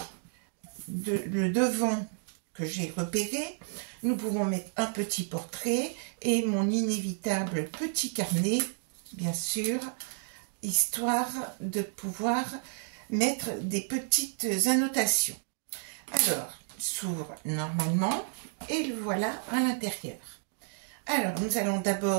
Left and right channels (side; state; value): left; silent; digital silence